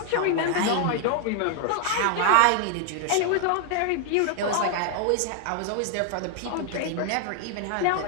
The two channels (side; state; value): both; different; correlation 0.00